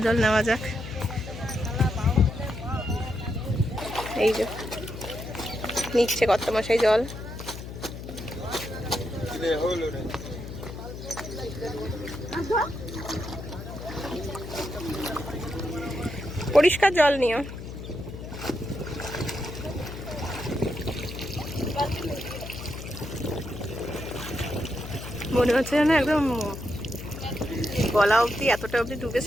জল নেওয়া যাক। এই যে নিচ্ছে কর্তামশাই জল। পরিষ্কার জল নিও। মনে হচ্ছে যেন একদম গলা অবধি, এতটা অবধি ডুবে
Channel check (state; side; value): noise; left; hum, 10 dB below the sound